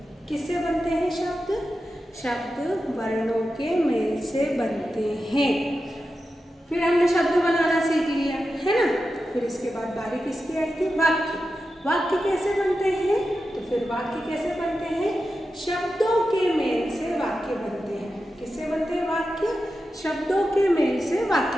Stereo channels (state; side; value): normal; both; correlation 0.91